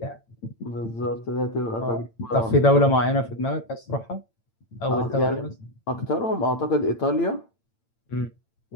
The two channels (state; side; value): late; right; 8.9 ms